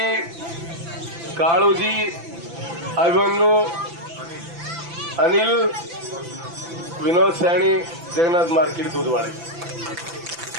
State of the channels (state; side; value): late; left; 5.9 ms